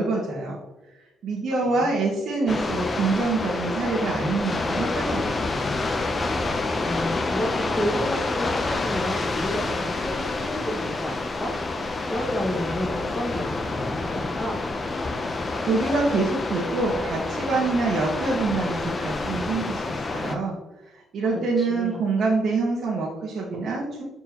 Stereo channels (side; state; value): both; normal; correlation 0.76